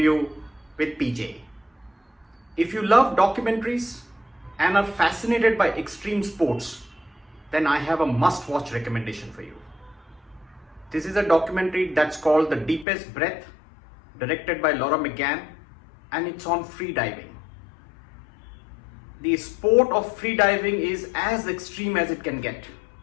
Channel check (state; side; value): drops out; right; at 12.9 s